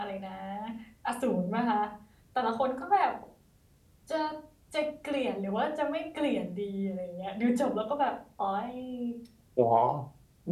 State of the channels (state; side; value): identical; both; correlation 1.00